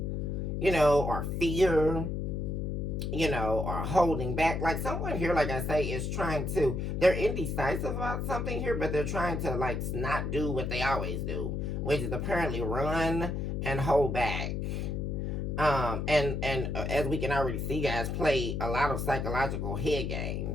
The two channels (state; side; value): noise; left; hum, 2 dB below the sound